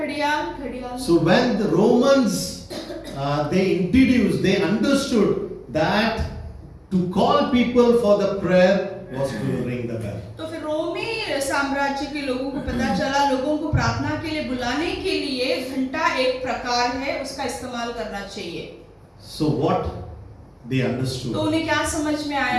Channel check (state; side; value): identical; both; correlation 1.00